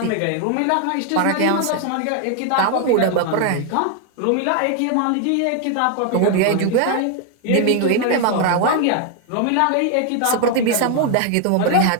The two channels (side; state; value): both; different; correlation 0.00